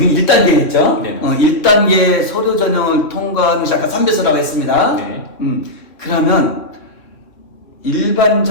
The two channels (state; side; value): late; right; 3.1 ms